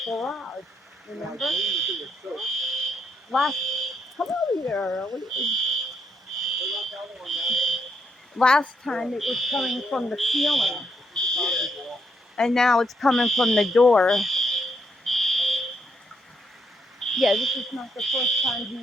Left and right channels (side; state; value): both; normal; correlation 0.76